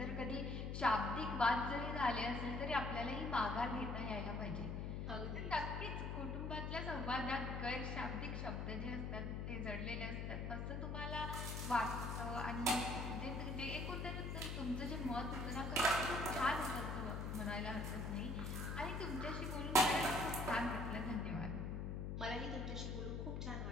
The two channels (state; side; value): noise; left; hum, 3 dB below the sound